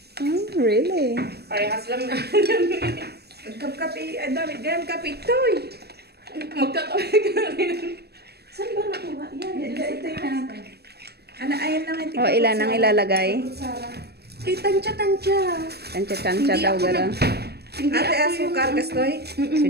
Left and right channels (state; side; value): late; left; 0.47 ms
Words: Really? Parehas lang na. Kape, dami ganyan kape toy. Magkakape ka rin. Saan ba nakuha yan? Ito yung ano, ayan lang yung O, ilan ang ilalagay? Sarah. Tansya-tansya. Tansya-tansya Hindi daw ako gano'n. Hindi Ate, ako asukar, kastoy?